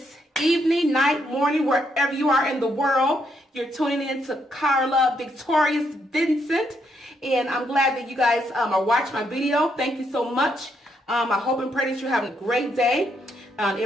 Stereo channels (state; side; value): normal; both; correlation 0.76